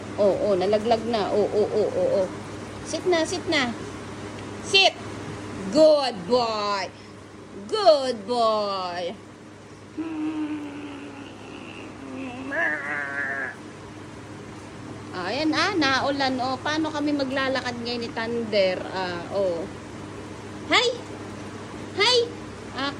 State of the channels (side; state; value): both; identical; correlation 1.00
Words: Nalaglag na. Oo. Sit na. Sit! Good boy! Good boy! Ayan naulan paano kami maglalakad ngayon ni Thunder? Hi!